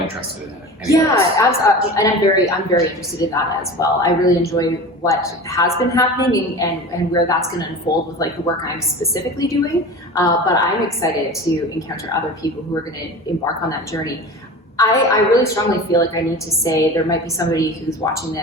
interested in. Anyways. Yeah, and I'm very interested in that as well. I really enjoy what has been happening and where that's going to unfold with like the work I'm specifically doing. But I'm excited to encounter other people who are going to embark on that journey. I really strongly feel like I need to say there might be somebody who's watching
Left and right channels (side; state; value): both; normal; correlation 0.34